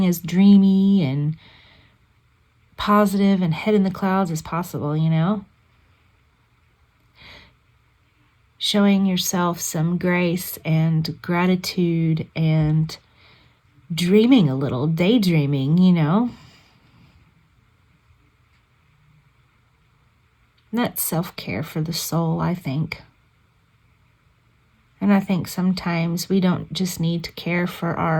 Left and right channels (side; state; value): both; identical; correlation 1.00